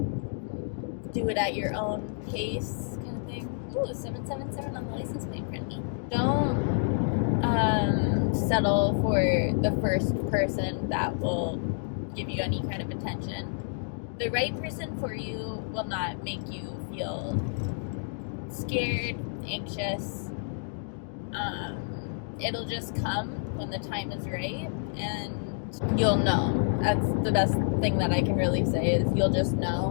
Do it at your own pace, kind of thing. Ooh, 777 on the license plate, friendly. Don't settle for the first person that will give you any kind of attention. The right person for you will not make you feel scared, anxious. It'll just come when the time is right, and you'll know. That's the best thing that I can really say, is you'll just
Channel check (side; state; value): right; silent; digital silence